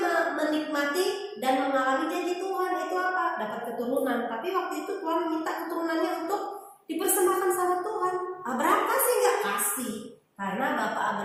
menikmati dan mengalami janji Tuhan. Itu apa? Dapat keturunan. Tapi waktu itu Tuhan minta keturunannya untuk dipersembahkan sama Tuhan. Abraham kasih nggak? Kasih. Karena bapak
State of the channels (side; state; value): both; identical; correlation 1.00